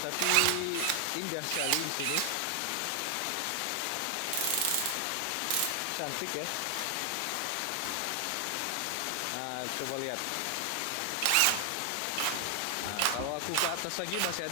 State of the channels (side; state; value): both; different; correlation 0.00